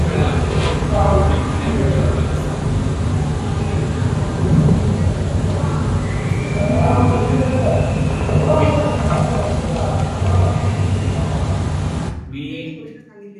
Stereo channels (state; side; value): identical; both; correlation 1.00